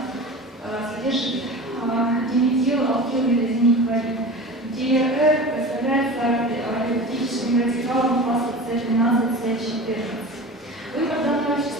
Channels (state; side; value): normal; both; correlation 0.33